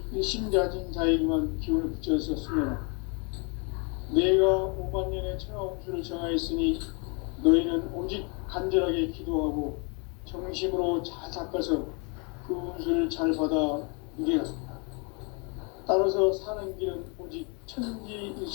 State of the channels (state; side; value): quieter; right; 34.0 dB